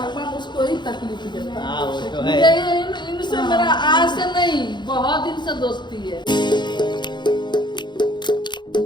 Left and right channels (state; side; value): late; right; 0.22 ms